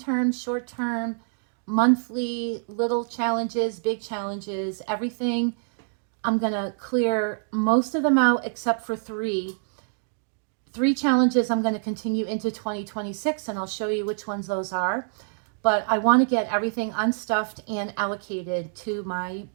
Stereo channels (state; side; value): silent; left; digital silence